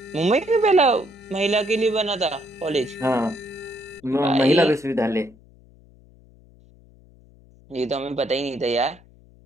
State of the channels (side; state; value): left; noise; hum, 26 dB below the sound